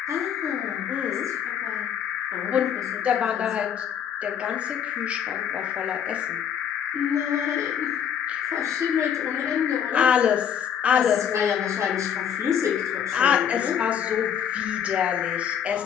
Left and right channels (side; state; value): right; quieter; 8.7 dB